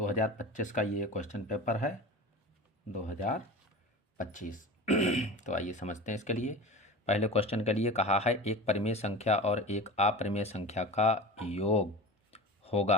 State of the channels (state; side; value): normal; both; correlation 0.33